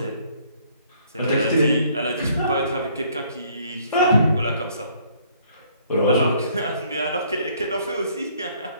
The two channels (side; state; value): both; inverted; correlation -0.63